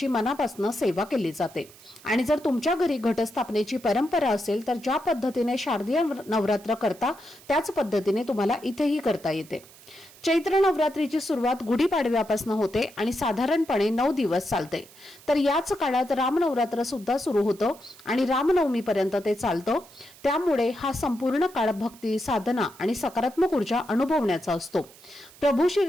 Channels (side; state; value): right; noise; hiss, 23 dB below the sound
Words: मनापासून सेवा केली जाते. आणि जर तुमच्या घरी घटस्थापनेची परंपरा असेल तर ज्या पद्धतीने शारदीय नवरात्र करता त्याच पद्धतीने तुम्हाला इथेही करता येते. चैत्र नवरात्रीची सुरुवात गुढीपाडव्यापासून होते आणि साधारणपणे 9 दिवस चालते. तर याच काळात रामनवरात्र सुद्धा सुरू होतं आणि रामनवमीपर्यंत ते चालतं. त्यामुळे हा संपूर्ण काळ भक्ती, साधना आणि सकारात्मक ऊर्जा अनुभवण्याचा असतो. प्रभू